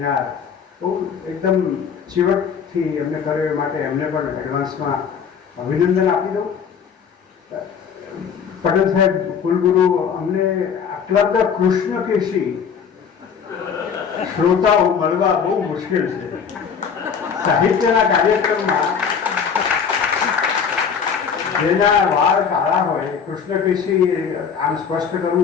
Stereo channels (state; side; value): quieter; right; 6.8 dB